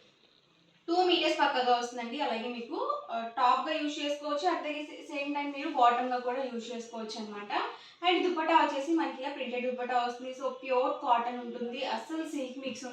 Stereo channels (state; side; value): identical; both; correlation 1.00